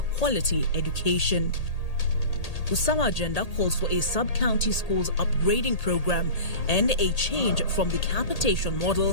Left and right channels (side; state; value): right; late; 1.8 ms